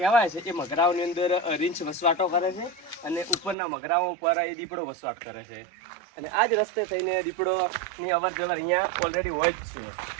કહેવાય છે એ મગરાઓની અંદર રીંછ વસવાટો કરે છે અને ઉપરના મગરાઓ ઉપર એ દીપડો વસવાટ કરે છે. અને આ જ રસ્તે થઈને દીપડોની અવર જવર અહીંયા ઓલરેડી હોય જ છે.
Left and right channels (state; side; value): drops out; left; at 3.6 s